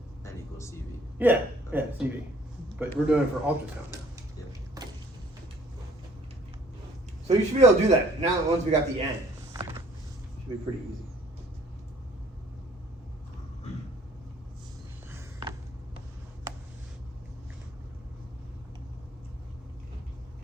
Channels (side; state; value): both; normal; correlation 0.58